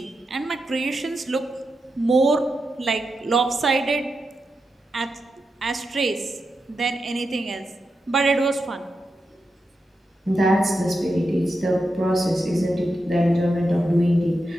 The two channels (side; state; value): both; normal; correlation 0.88